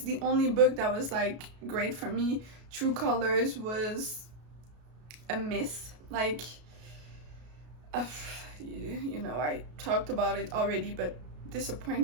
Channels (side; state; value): left; late; 33 ms